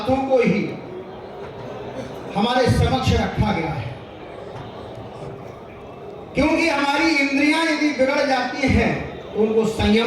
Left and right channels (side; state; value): both; identical; correlation 1.00